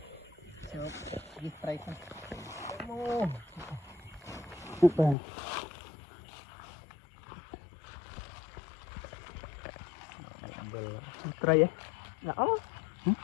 đi tay con hút vào tay ấy nó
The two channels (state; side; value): drops out; right; at 5.2 s